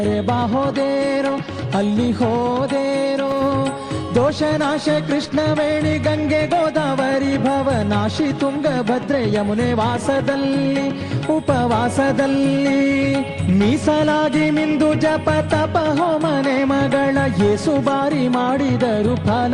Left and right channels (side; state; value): both; identical; correlation 1.00